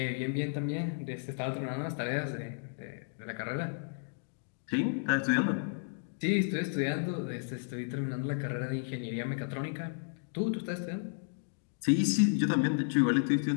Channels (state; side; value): silent; right; digital silence